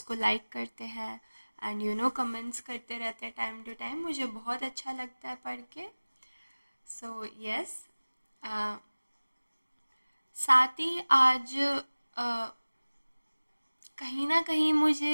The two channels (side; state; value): both; inverted; correlation -1.00